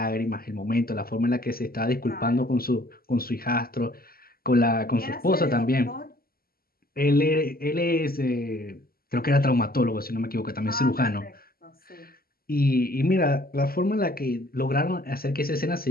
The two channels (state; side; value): late; right; 0.43 ms